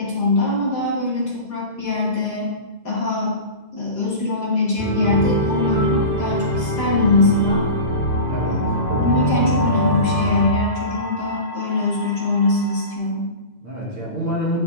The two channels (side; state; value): right; late; 2.0 ms